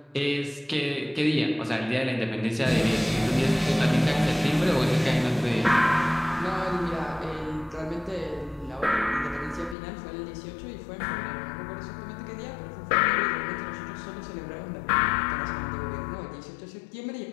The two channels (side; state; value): right; drops out; at 9.8 s